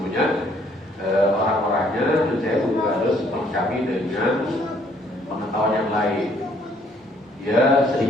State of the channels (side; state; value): both; normal; correlation 0.64